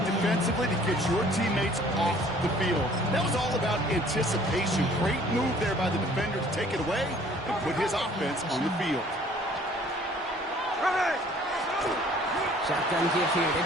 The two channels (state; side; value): normal; both; correlation 0.55